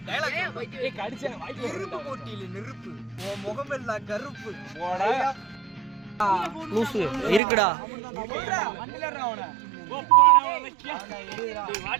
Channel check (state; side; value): drops out; left; at 7.4 s